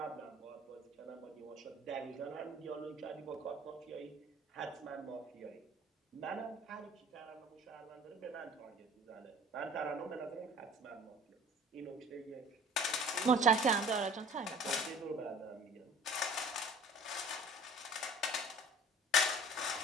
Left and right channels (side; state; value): both; normal; correlation 0.47